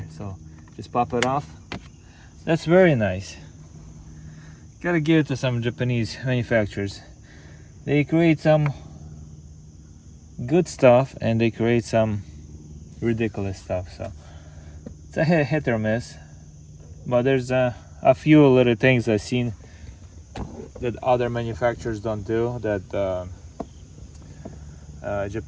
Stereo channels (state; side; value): identical; both; correlation 1.00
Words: so just pop it off. That's very nice. Gotta give it to some Japanese manufacturers. They create some good stuff and they create some ridiculous stuff. So it's a hit or miss, but there's a few little things I've seen that other manufacturers don't do that